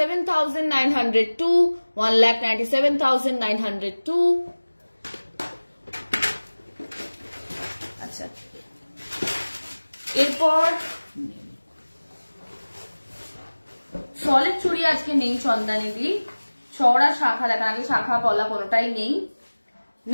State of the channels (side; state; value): both; inverted; correlation -1.00